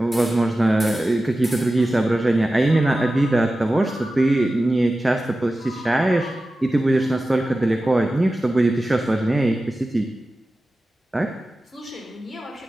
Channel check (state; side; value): normal; both; correlation 0.95